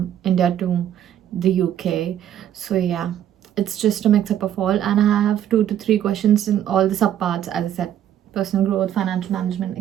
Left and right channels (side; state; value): left; quieter; 10.7 dB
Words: India to the UK. So yeah, it's just a mix up of all, and I have 2 to 3 questions in all the subparts, as I said: personal growth, financial management,